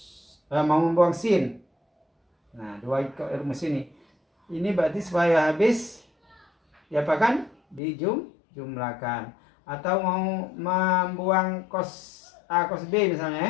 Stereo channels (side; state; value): right; drops out; at 7.8 s